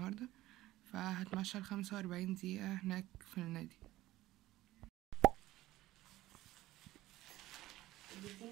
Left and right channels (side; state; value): left; quieter; 16.5 dB